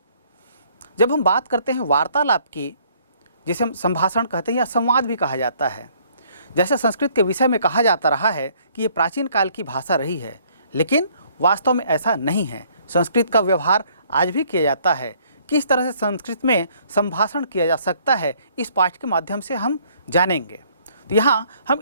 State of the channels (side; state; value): both; inverted; correlation -0.63